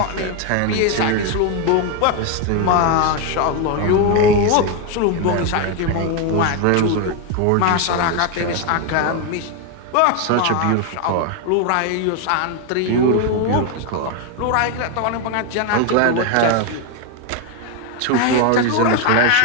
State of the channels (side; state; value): both; different; correlation 0.01